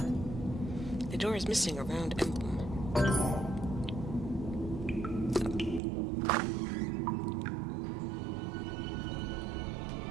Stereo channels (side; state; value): left; drops out; at 5.8 s